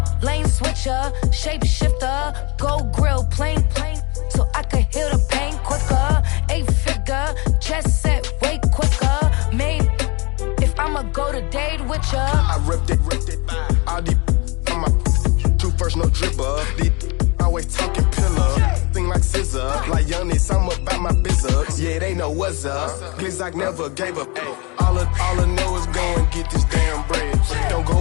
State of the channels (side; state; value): right; quieter; 28.3 dB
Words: lane switcher, shapeshifter, go grill, plane, so I can heal the pain quicker. 8-figure, jet set, way quicker. Made, if I'ma go to date with ya. I ripped it, all these on my two first, no dribble. These always talking pillar, thing like scissor. Like youngest, I'm about my business. Yeah, they know what's up. Glizzock never gave up. All I know is go and get this damn bread. Don't